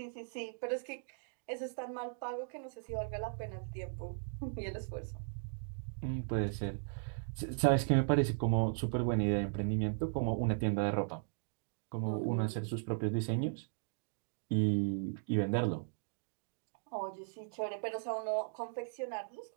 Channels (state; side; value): silent; left; digital silence